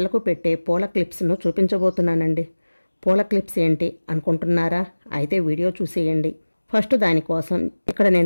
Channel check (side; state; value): both; inverted; correlation -1.00